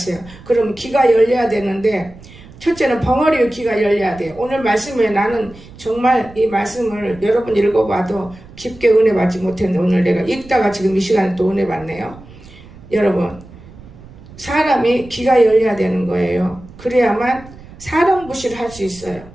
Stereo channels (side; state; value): right; noise; rumble, 20 dB below the sound